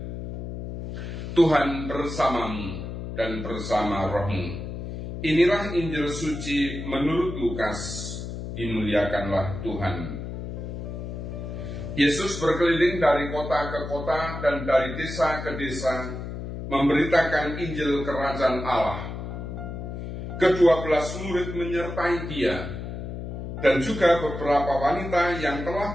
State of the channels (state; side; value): noise; left; hum, 7 dB below the sound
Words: Tuhan bersamamu dan bersama rohmu. Inilah Injil suci menurut Lukas. Dimuliakanlah Tuhan. Yesus berkeliling dari kota ke kota dan dari desa ke desa, memberitakan Injil Kerajaan Allah. Ke-12 murid menyertai dia, dan juga beberapa wanita yang telah